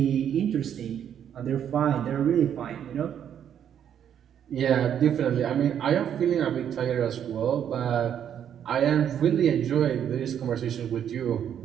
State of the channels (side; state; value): left; quieter; 9.2 dB